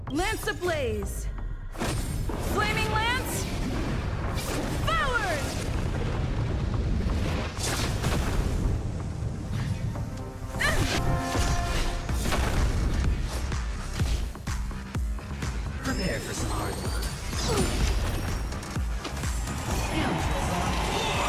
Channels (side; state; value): both; identical; correlation 1.00